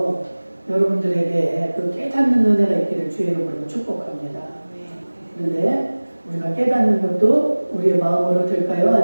여러분들에게 그 깨닫는 은혜가 있기를 주의 이름으로 축복합니다. 그런데 우리가 깨닫는 것도 우리의 마음으로 될까요?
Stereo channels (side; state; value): both; inverted; correlation -1.00